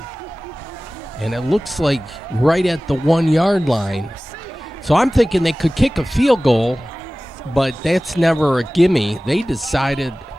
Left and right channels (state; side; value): normal; both; correlation 0.97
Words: And it looks like right at the 1 yard line. So I'm thinking they could kick a field goal, but that's never a gimme. They decided